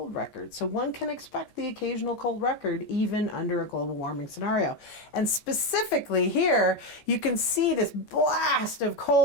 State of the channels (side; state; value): right; late; 14 ms